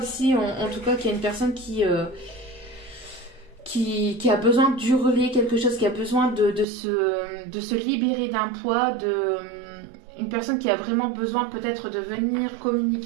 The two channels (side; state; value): left; drops out; at 6.7 s